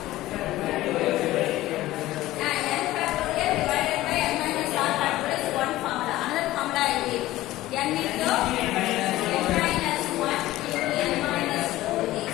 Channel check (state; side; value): quieter; right; 16.3 dB